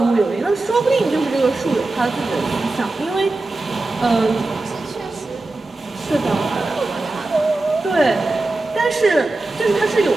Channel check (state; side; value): quieter; left; 3.1 dB